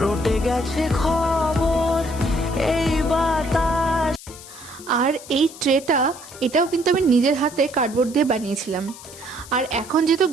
রটে গেছে খবর এই বাতাস। আর এই ট্রেটা, এটাও কিন্তু আমি নিজের হাতে কার্ডবোর্ড দিয়ে বানিয়েছিলাম। আর এখন যেহেতু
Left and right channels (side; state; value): left; noise; hiss, 17 dB below the sound